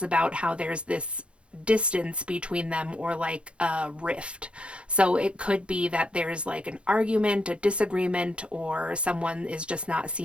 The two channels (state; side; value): late; left; 0.058 ms